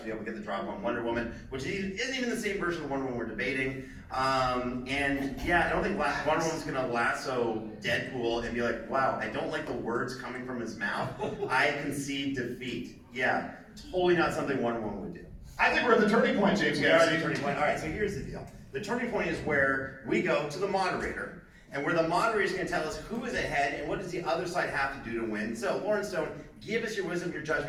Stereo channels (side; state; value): both; identical; correlation 1.00